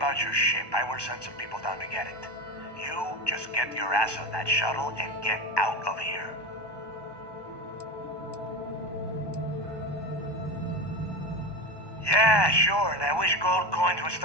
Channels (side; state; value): right; late; 1.2 ms